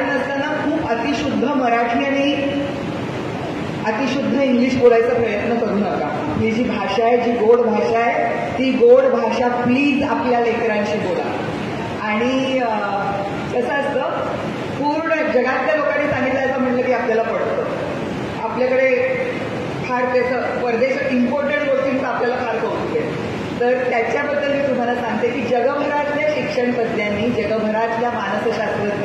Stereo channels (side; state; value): both; identical; correlation 1.00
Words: नसताना खूप अतिशुद्ध मराठी आणि अतिशुद्ध इंग्लिश बोलायचा प्रयत्न करू नका. ही जी भाषा आहे, जी गोड भाषा आहे, ती गोड भाषा प्लीज आपल्या लेकरांशी बोला. आणि कसं असतं, पूर्ण जगातल्या लोकांनी सांगितलं म्हटलं की आपल्याला पडतं. आपल्याकडे फार त्याचं परदेशात इम्पॉर्टंट गोष्टींचं आपल्याला फार कौतुक आहे. तर त्याच्याबद्दल मी तुम्हाला सांगते की जगभरातल्या शिक्षण तज्ज्ञांनी, जगभरातल्या